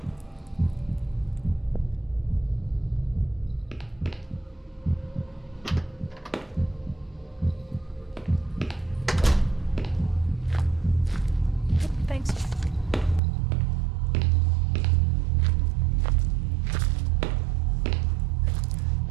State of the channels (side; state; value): left; drops out; at 13.2 s